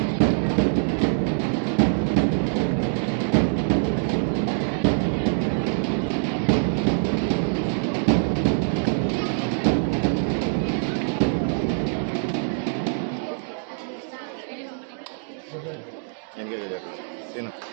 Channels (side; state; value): left; silent; digital silence